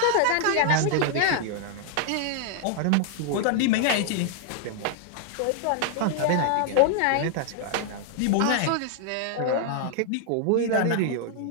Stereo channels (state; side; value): different; both; correlation 0.00